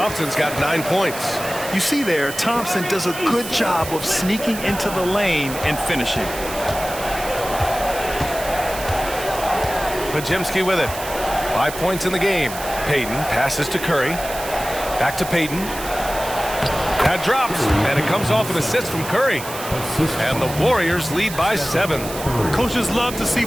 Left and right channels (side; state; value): right; noise; hiss, 10 dB below the sound